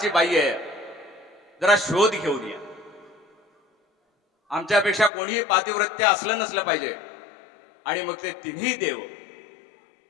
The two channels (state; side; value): drops out; right; at 5.1 s